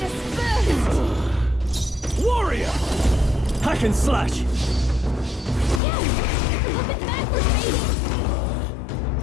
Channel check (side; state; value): right; drops out; at 5.8 s